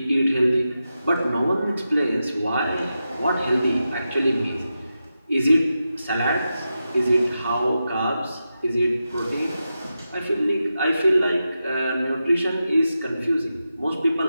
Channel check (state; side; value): inverted; both; correlation -0.90